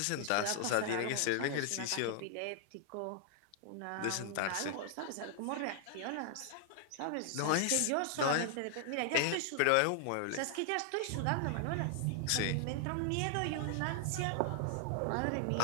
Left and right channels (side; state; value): both; different; correlation 0.00